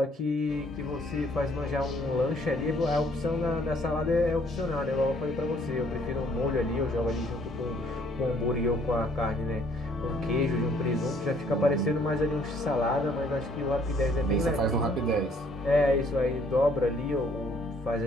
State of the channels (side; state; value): both; normal; correlation 0.63